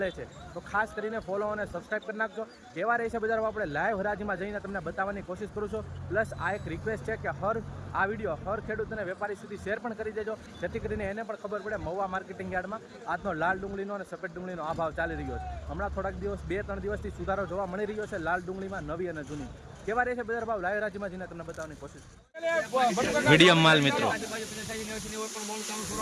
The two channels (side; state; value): both; identical; correlation 1.00